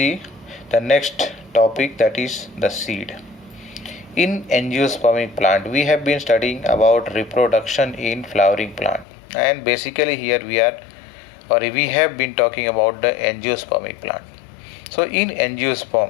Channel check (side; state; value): right; drops out; at 9.1 s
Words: the next topic, that is the seed. In angiospermic plant, we have been studying about reproduction in flowering plant, and basically here we have been talking about the angiospermic plant. So in